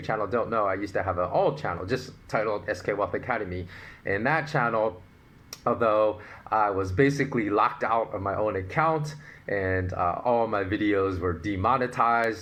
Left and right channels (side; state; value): both; identical; correlation 1.00